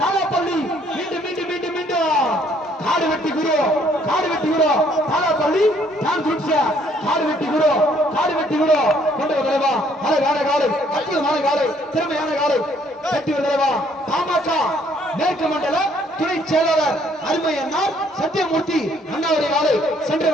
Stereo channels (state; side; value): normal; both; correlation 0.64